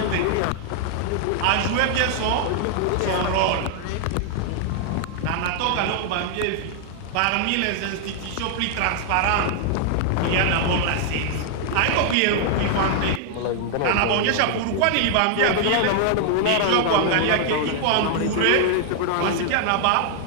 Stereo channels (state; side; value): different; both; correlation 0.00